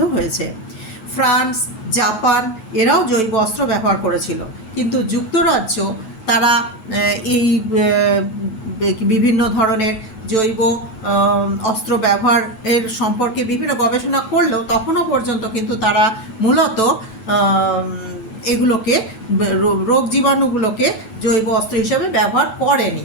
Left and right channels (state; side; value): late; right; 8.2 ms